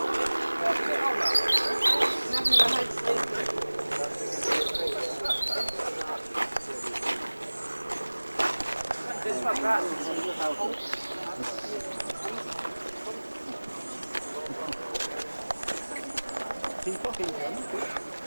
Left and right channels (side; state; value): both; inverted; correlation -1.00